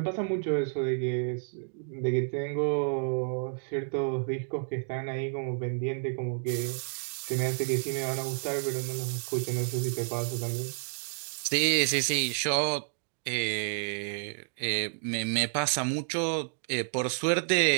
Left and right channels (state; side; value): silent; left; digital silence